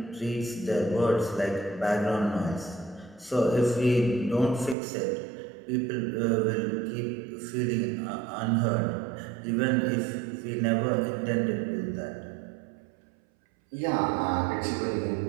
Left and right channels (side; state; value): left; drops out; at 4.8 s